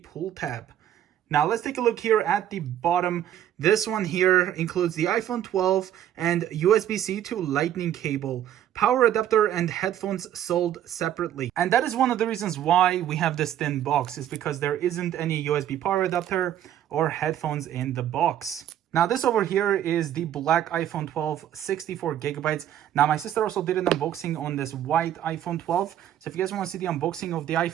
tab. Now let's take a look here at the bottom. This one here includes the iPhone 12 and USB-C to Lightning cable, power adapter and headphones sold separately. And that is one of the reasons why we have this thin box, is because there isn't any USB power adapter or headphones in the box. Now this over here is the black iPhone 12, 64 gigabytes. Now my sister also did an unboxing on this white iPhone 12. So if you guys want to see the unboxing of the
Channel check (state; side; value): quieter; left; 11.1 dB